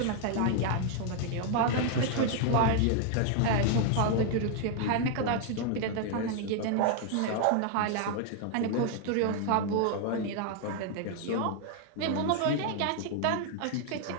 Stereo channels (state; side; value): different; both; correlation 0.00